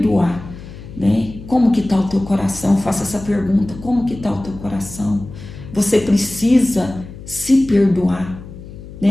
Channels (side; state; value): left; noise; hum, 15 dB below the sound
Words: né? Como que está o teu coração? Faça essa pergunta, como que está o teu coração? Você precisa se perdoar,